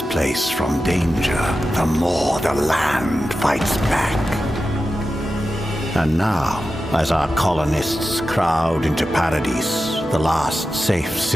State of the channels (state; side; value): normal; both; correlation 0.92